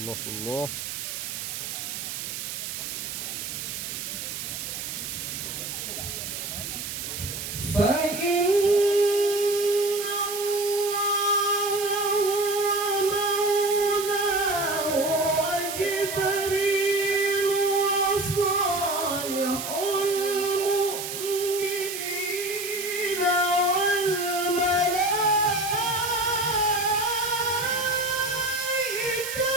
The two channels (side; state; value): right; noise; hiss, 6 dB below the sound